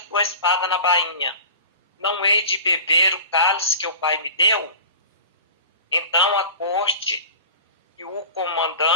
espada na bainha. Não hei de beber o cálice que o Pai me deu? Então a corte e o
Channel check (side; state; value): both; inverted; correlation -0.38